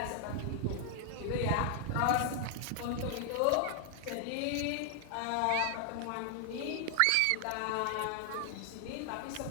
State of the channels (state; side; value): different; both; correlation 0.00